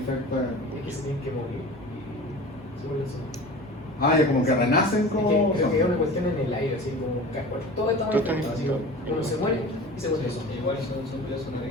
Es que se tienen que morir y se vuelven zombies. Ah, ya como que renacen como... Creo que es una cuestión en el aire, así como todo está infectado, así como uno se muere y se vuelve zombie. Igual son zombies una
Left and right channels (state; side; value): normal; both; correlation 0.37